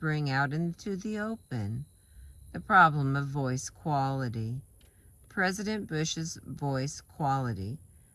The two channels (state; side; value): identical; both; correlation 1.00